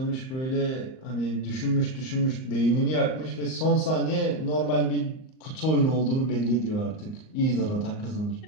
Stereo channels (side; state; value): right; late; 38 ms